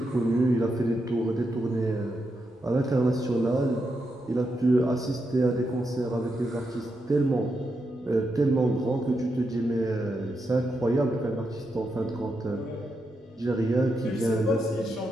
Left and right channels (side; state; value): both; normal; correlation 0.84